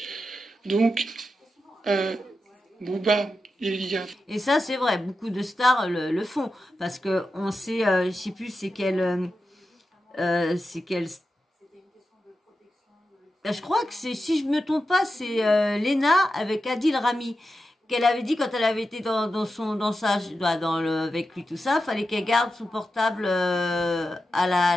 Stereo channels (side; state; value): both; normal; correlation 0.90